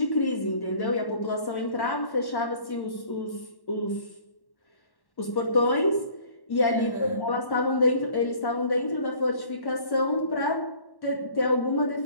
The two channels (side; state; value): right; late; 1.1 ms